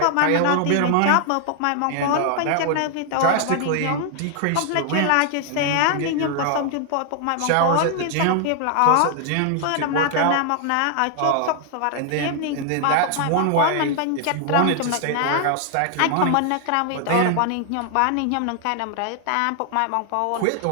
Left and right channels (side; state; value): both; different; correlation 0.00